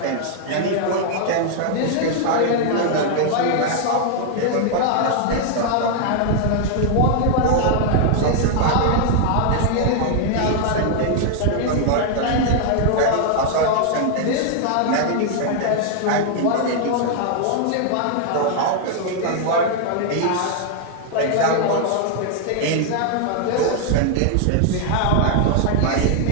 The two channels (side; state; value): both; different; correlation 0.00